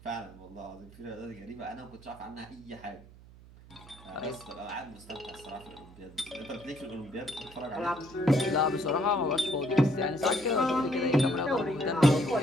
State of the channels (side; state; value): right; noise; hum, 21 dB below the sound